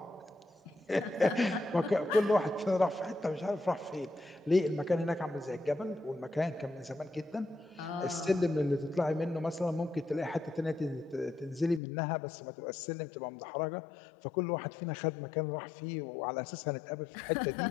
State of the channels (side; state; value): right; drops out; at 11.8 s